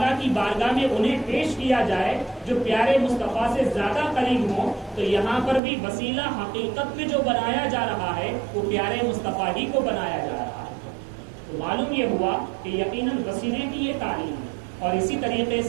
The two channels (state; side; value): drops out; left; at 5.6 s